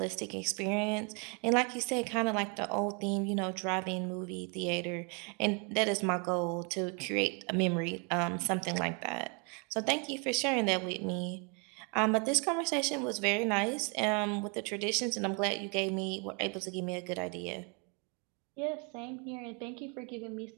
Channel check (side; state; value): left; quieter; 34.6 dB